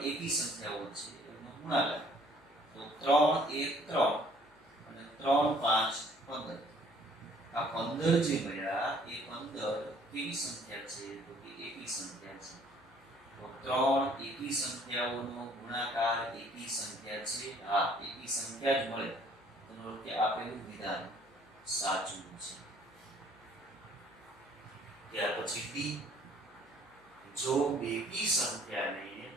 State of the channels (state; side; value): noise; left; hum, 29 dB below the sound